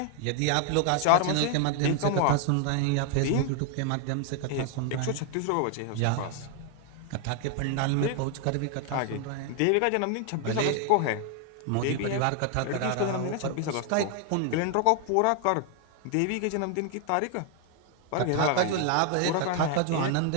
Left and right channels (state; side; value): different; both; correlation 0.00